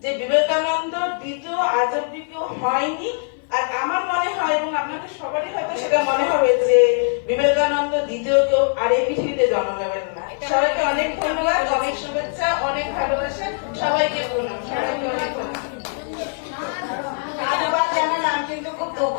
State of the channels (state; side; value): silent; right; 57 dB below the other